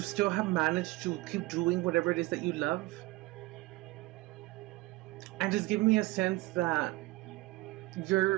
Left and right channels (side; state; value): left; quieter; 20.4 dB